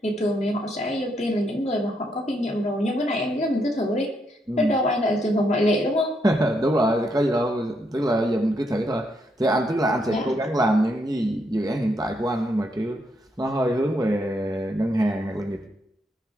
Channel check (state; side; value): normal; both; correlation 0.77